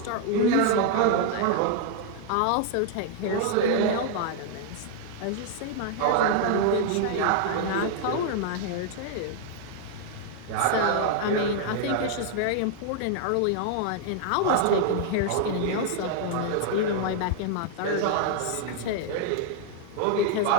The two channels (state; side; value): different; both; correlation 0.00